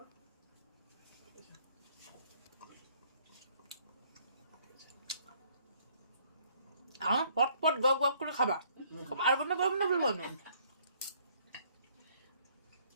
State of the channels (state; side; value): inverted; both; correlation -0.64